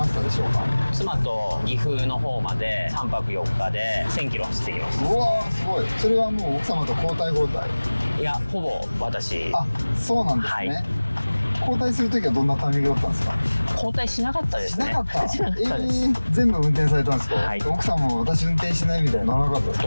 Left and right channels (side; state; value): both; inverted; correlation -1.00